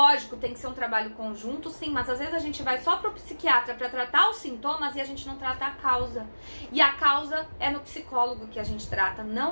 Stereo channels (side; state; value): both; inverted; correlation -1.00